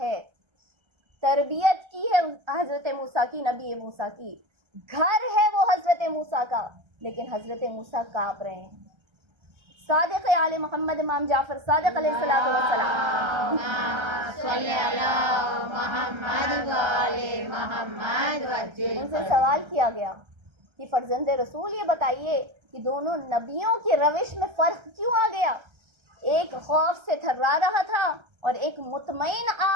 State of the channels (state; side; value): late; left; 1.3 ms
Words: تربیت کی ہے حضرت موسیٰ کی، نبی موسیٰ کی، گھر ہے وہ حضرت موسیٰ کا، لیکن حضرت موسیٰ کانپ رہے ہیں۔ صادق آل محمد امام جعفر صادق علیہ السلام صلی علی محمد و آل محمد وجل ان سے سوال کیا گیا کہ فرزند رسول یہ بتائیے کہ دونوں نبیوں کی روش میں فرق کیوں آ گیا؟ ایک خوف سے تھرا رہا تھا اور ایک مطمئن